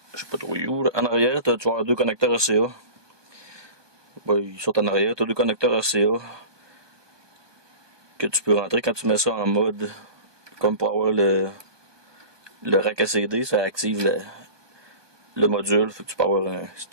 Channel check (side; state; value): left; late; 1.2 ms